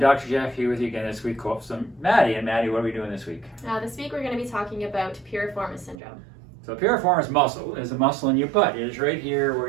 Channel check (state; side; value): drops out; left; at 6.0 s